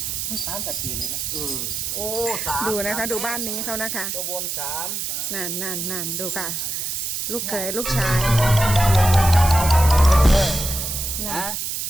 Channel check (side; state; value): right; noise; hiss, 3 dB below the sound